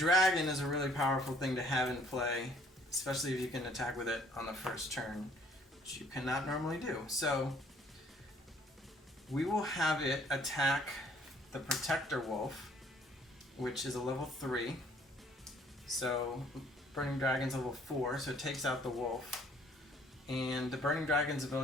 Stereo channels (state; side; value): normal; both; correlation 0.60